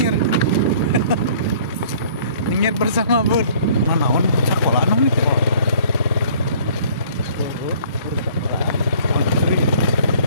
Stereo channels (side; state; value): both; inverted; correlation -0.55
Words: Nyengir bersama Bud. Naon sekolah anu gitu.